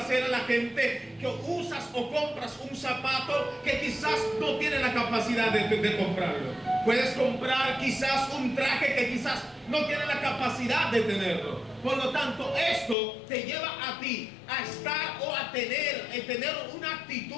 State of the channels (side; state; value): right; drops out; at 13.0 s